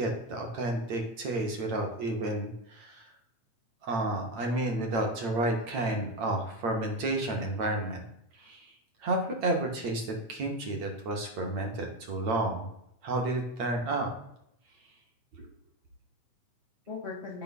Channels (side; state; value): left; late; 8.8 ms